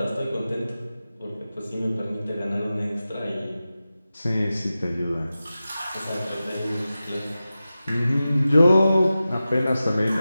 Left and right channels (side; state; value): both; inverted; correlation -0.94